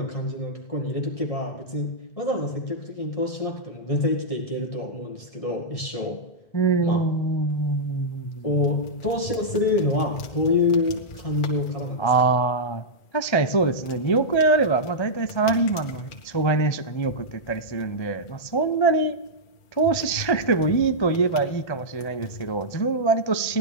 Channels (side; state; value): right; late; 1.3 ms